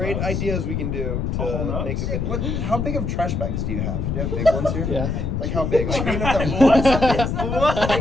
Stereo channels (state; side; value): noise; left; rumble, 1 dB below the sound